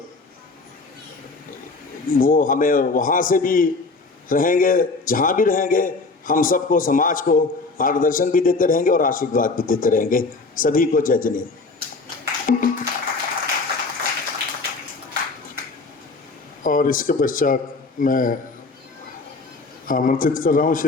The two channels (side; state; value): right; quieter; 3.8 dB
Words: वो हमें वहाँ से भी रहेंगे, जहाँ भी रहेंगे, हम सबको, समाज को मार्गदर्शन भी देते रहेंगे और आशीर्वाद भी देते रहेंगे। सभी को जय जिनेन्द्र। और इसके पश्चात मैं आमंत्रित कर रहा हूँ